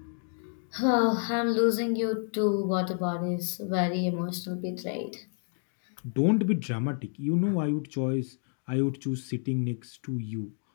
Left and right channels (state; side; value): silent; right; 55 dB below the other